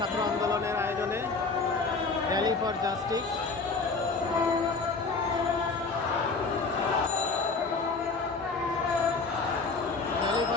আন্দোলনের আয়োজনে rally for justice. Rally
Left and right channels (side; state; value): right; quieter; 4.2 dB